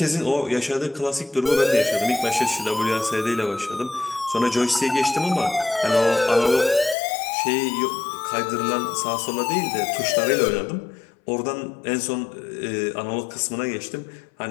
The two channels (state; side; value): drops out; right; at 7.0 s